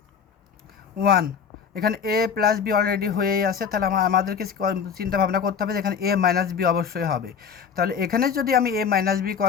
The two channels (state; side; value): quieter; right; 6.8 dB